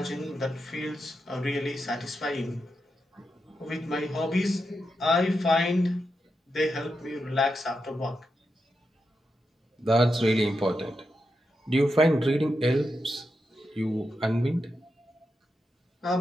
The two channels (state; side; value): normal; both; correlation 0.87